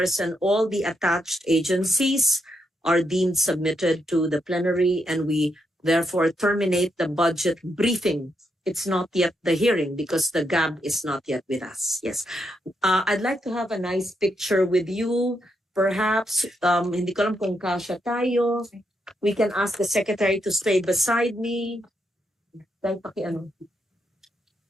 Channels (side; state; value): both; normal; correlation 0.81